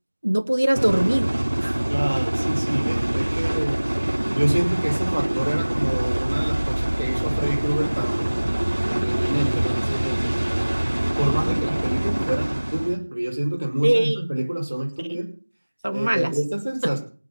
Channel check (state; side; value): inverted; both; correlation -1.00